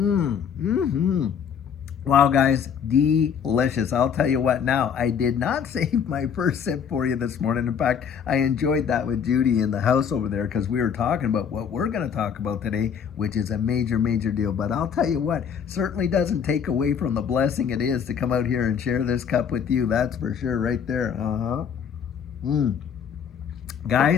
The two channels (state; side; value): quieter; right; 7.5 dB